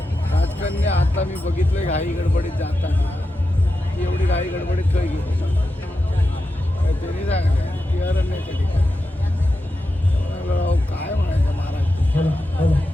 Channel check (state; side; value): normal; both; correlation 0.90